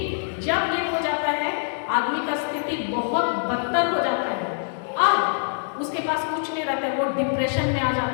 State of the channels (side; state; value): right; silent; digital silence